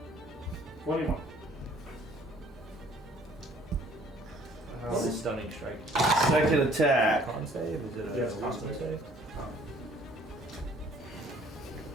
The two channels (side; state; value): both; normal; correlation 0.57